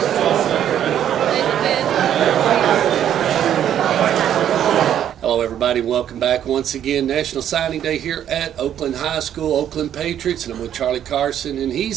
Hello everybody, welcome back once again. National Signing Day here at Oakland High School, Oakland Patriots, and I'm with Charlie Carson, and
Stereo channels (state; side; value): quieter; left; 10.2 dB